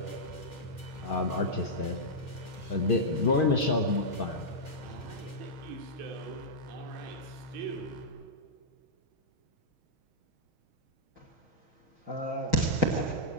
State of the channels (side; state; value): left; late; 6.4 ms